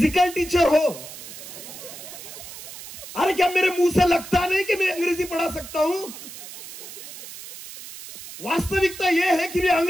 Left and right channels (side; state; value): right; noise; hiss, 13 dB below the sound